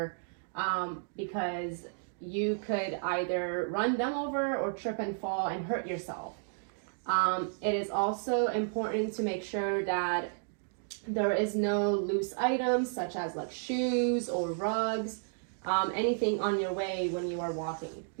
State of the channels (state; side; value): silent; left; digital silence